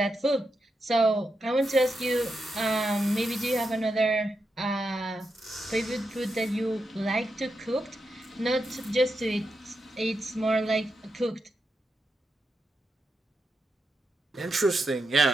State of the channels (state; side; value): normal; both; correlation 0.86